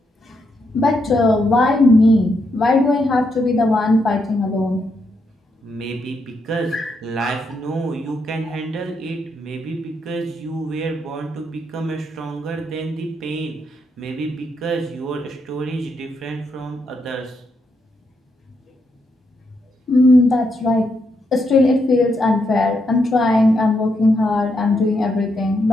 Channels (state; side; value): normal; both; correlation 0.80